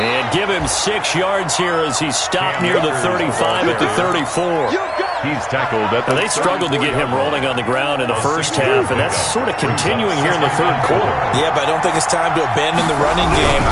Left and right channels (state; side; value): identical; both; correlation 1.00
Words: give him 6 yards here as he's stopped near the 35 at the 34. He's tackled at the. They struggled to get him rolling on the ground in the first half, and that's sort of continuing here in the third quarter. Yeah, but I don't think it's time to abandon the running game.